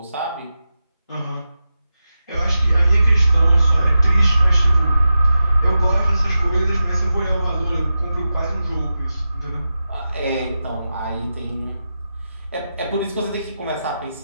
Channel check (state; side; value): inverted; both; correlation -0.91